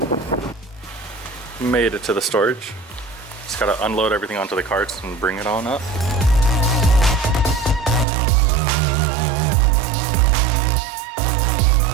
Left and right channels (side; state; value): left; drops out; at 8.1 s